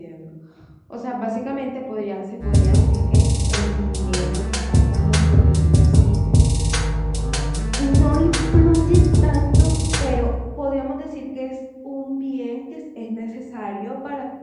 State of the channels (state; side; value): identical; both; correlation 1.00